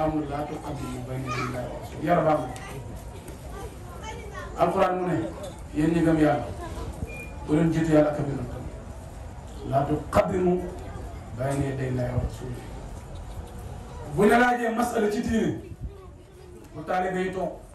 amanu laa tuqaddimu bayna yaday llaahi wa rasuulihi yàlla baax na alquran mu ne yéen ñi gëm yàlla bu leen jiitu yàlla ak a yonentam laa tuqaddimu bayna yaday llaahi wa rasuulihi bu ñu laajee masala ci diine bu taalibe yi toog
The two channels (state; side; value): identical; both; correlation 1.00